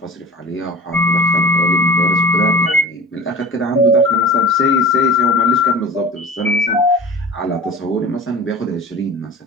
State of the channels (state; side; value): normal; both; correlation 0.38